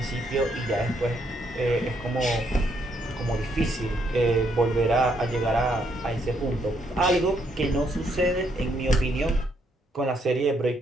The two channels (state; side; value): normal; both; correlation 0.73